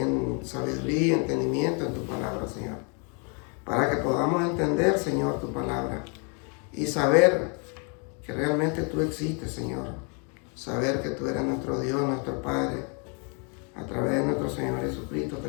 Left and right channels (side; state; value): right; quieter; 36.9 dB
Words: sabiduría y entendimiento en tu palabra, Señor. Para que podamos entender, Señor, tu palabra. Y saber que realmente tú existes, Señor. Saber que tú eres nuestro Dios, nuestro Padre. A través de nuestro Señor Jesucristo te